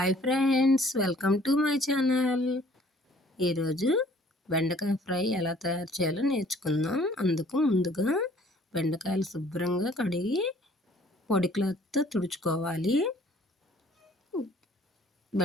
friends, welcome to my channel. ఈరోజు బెండకాయ fry ఎలా తయారు చేయాలో నేర్చుకుందాం. అందుకు ముందుగా బెండకాయలు శుభ్రంగా కడిగి పొడి క్లాత్తో తుడుచుకోవాలి.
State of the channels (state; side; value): normal; both; correlation 0.56